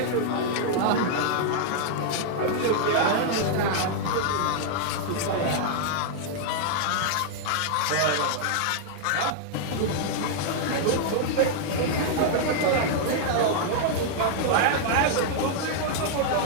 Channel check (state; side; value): different; both; correlation -0.01